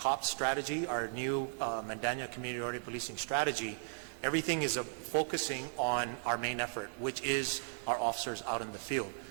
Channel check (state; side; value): silent; left; 54 dB below the other